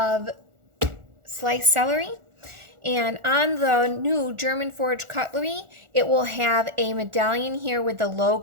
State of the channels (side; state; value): left; late; 1.4 ms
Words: sliced celery. And on the new German forged cutlery, it will have a medallion here with the